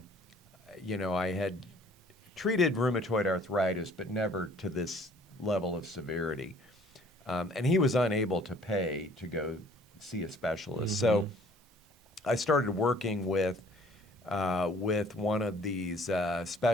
treated rheumatoid arthritis, but never to this level of severity. And he was unable to pay to go see a specialist. So I started working with one of these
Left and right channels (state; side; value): normal; both; correlation 0.55